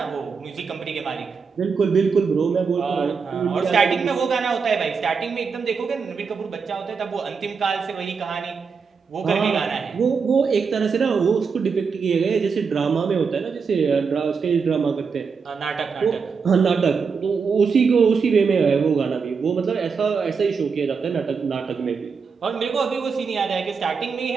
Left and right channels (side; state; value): left; quieter; 5.5 dB